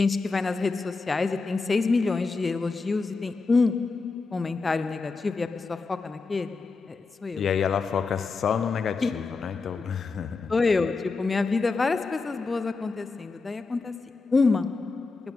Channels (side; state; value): right; quieter; 4.2 dB